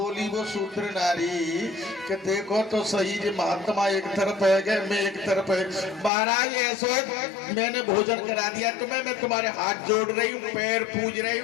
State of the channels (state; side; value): drops out; right; at 6.1 s